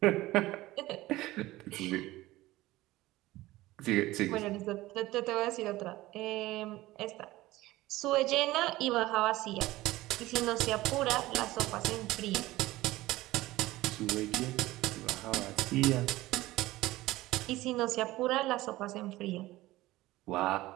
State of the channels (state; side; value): quieter; left; 17.8 dB